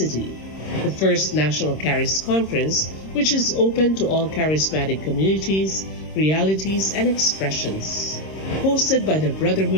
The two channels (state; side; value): late; right; 26 ms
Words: the first National Caris Conference, which is open to all charismatic communities, realities, and expressions. Hosted by the